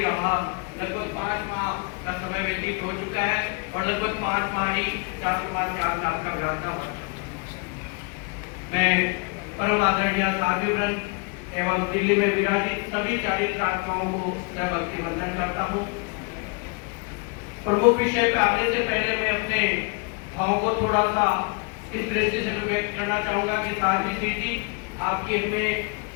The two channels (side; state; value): right; quieter; 32.1 dB